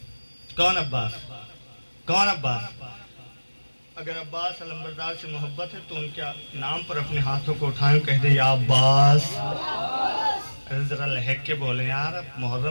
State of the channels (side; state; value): both; inverted; correlation -1.00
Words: کون عباس؟ کون عباس؟ اگر عباس علمبردار سے محبت ہے تو ان کے نام پر اپنے ہاتھوں کو اٹھائیں، کہہ دے یا عباس. ذرا لہک کے بولیں یار، اب